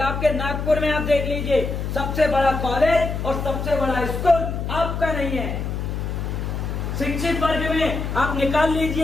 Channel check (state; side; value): noise; left; hum, 3 dB below the sound